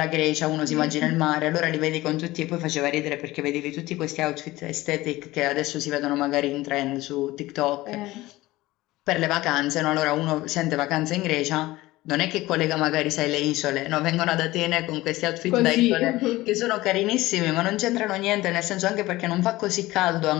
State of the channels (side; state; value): right; quieter; 18.4 dB